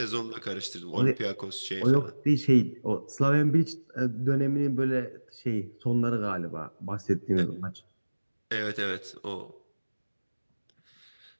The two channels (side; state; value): both; inverted; correlation -1.00